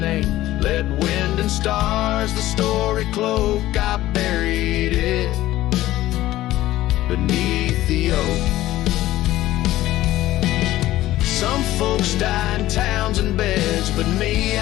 Let wind and stars the story cloak. I buried it beneath the oak. Some folks die in towns and beds, but me,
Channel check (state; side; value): quieter; right; 15.4 dB